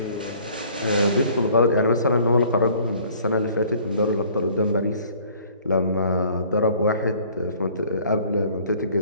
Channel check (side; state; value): both; inverted; correlation -0.55